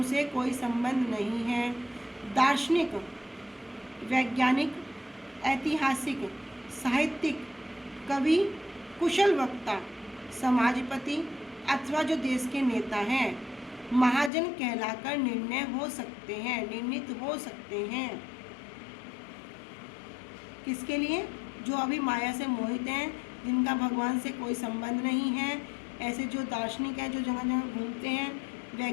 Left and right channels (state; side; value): drops out; right; at 14.3 s